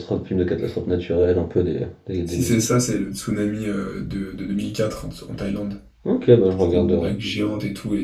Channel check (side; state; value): both; identical; correlation 1.00